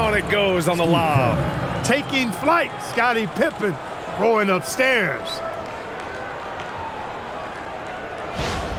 it goes on the lob. Taking flight, Scottie Pippen going upstairs.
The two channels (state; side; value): identical; both; correlation 1.00